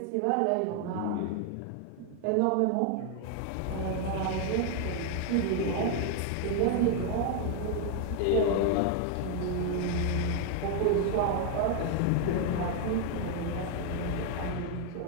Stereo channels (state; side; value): different; both; correlation 0.00